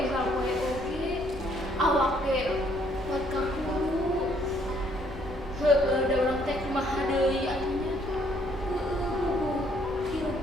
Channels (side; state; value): both; normal; correlation 0.66